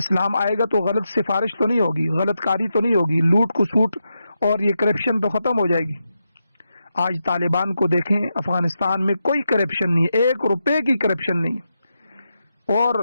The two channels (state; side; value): inverted; both; correlation -0.86